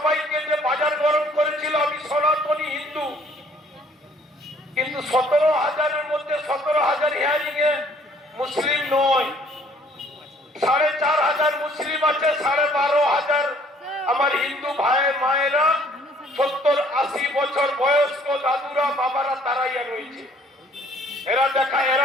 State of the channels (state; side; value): normal; both; correlation 0.59